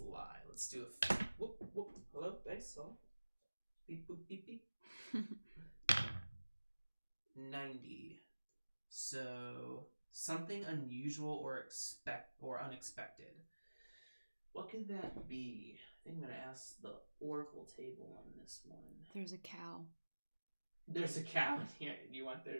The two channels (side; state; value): both; inverted; correlation -1.00